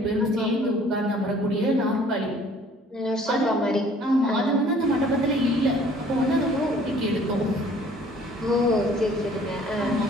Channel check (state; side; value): normal; both; correlation 0.55